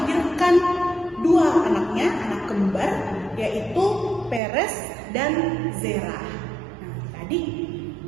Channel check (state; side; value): drops out; left; at 4.4 s